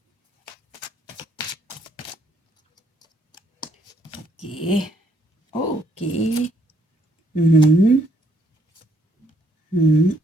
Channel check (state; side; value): normal; both; correlation 0.69